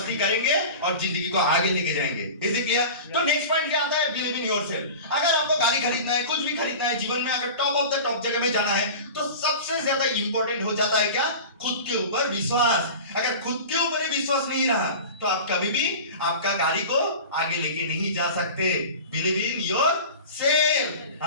करेंगे और जिंदगी को आगे लेके जाएंगे। Is it clear? तो नेक्स्ट पॉइंट क्या आता है? Believe in yourself. अगर आपको गाड़ी खरीदना है, कुछ भी खरीदना है जीवन में, अगर टॉप ऑफ द टॉप जगह में जाना है, तो सबसे ज्यादा इंपॉर्टेंट हो जाता है क्या? खुद के ऊपर विश्वास। अगर खुद के ऊपर ही विश्वास नहीं रहा तो आप कभी भी आपका गाड़ी को आगे लेके नहीं जा सकते। Believe in yourself.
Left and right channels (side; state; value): both; inverted; correlation -0.34